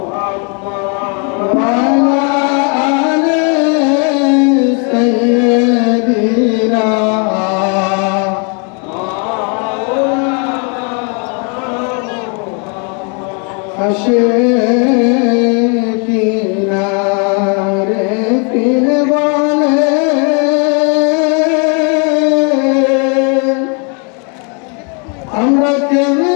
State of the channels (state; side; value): quieter; right; 36.9 dB